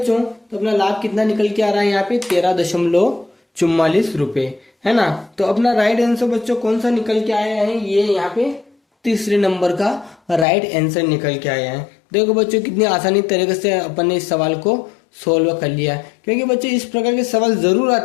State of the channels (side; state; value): right; drops out; at 10.5 s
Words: तो अपना लाभ कितना निकल के आ रहा है यहाँ पे 13.44 रुपये, है ना। तो अपना राइट आंसर बच्चों कौन सा निकल के आया है, ये यहाँ पे तीसरे नंबर का राइट आंसर निकल के आया है। देखो बच्चों कितनी आसानी तरीके से अपन ने इस सवाल को सोल्व कर लिया, क्योंकि बच्चों इस प्रकार के सवाल जरूर